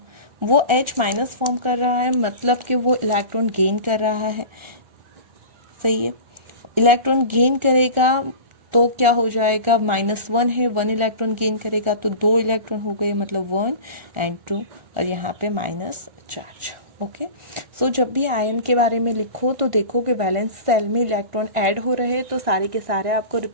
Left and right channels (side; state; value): left; late; 1.4 ms